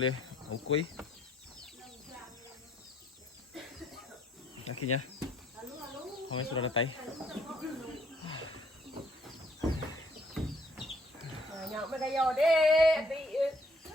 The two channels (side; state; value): both; normal; correlation 0.64